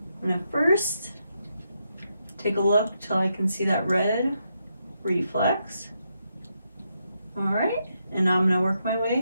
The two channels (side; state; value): both; inverted; correlation -0.81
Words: I'm going to first take a look till I can see that red reflex. All right, and I'm going to work my